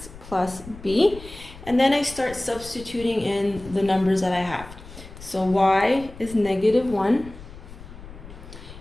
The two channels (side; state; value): left; noise; rumble, 16 dB below the sound